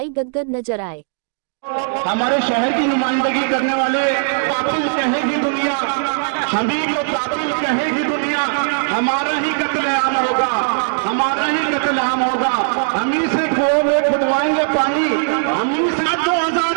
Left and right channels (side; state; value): left; silent; digital silence